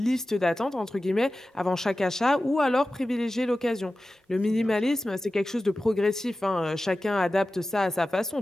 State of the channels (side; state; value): both; normal; correlation 0.95